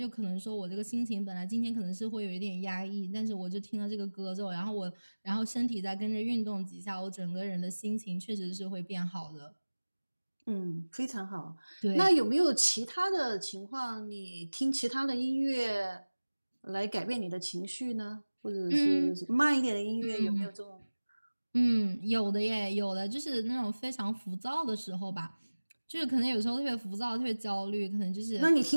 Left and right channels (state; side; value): inverted; both; correlation -1.00